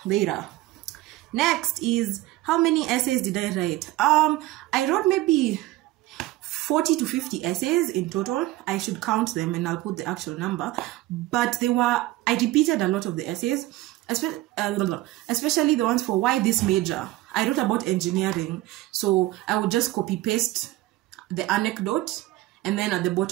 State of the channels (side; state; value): left; quieter; 17.3 dB